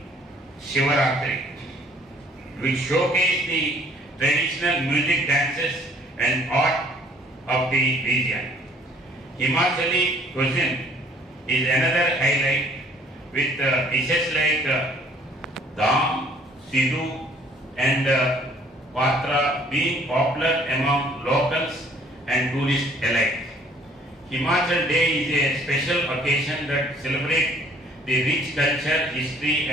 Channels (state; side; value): normal; both; correlation 0.58